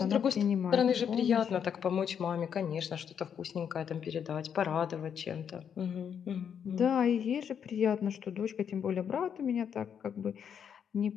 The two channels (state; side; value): quieter; right; 7.9 dB